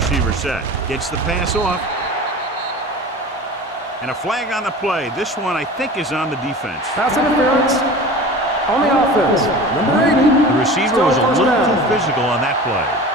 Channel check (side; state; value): both; normal; correlation 0.36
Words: set. Gets the pass off. And a flag on the play. This one, I think, is on the defense. Pass interference on the offense. Number 80. The receiver Still was a first little down. too physical on that play.